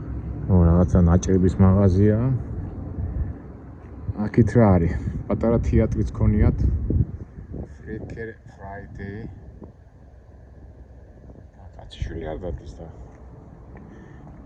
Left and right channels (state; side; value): identical; both; correlation 1.00